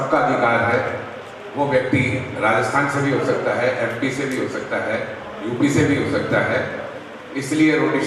अधिकार है। वो व्यक्ति राजस्थान से भी हो सकता है, एमपी से भी हो सकता है, यूपी से भी हो सकता है। इसलिए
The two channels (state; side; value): identical; both; correlation 1.00